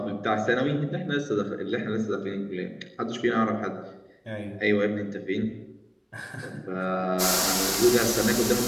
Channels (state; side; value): identical; both; correlation 1.00